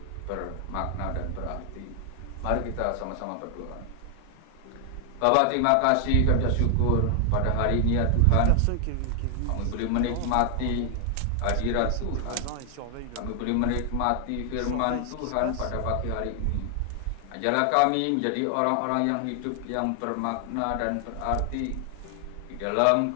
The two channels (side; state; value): both; different; correlation 0.00